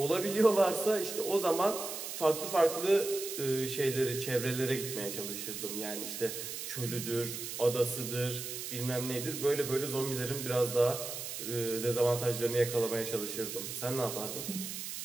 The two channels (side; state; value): right; noise; hiss, 6 dB below the sound